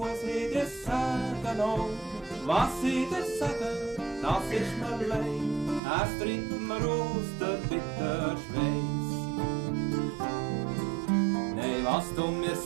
ich dir sagen? Oh, was ich dir sagen, das ist mir leid. Es trinkt mir aus der bitter Schweiß. Nein, was du mir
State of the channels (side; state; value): left; drops out; at 5.8 s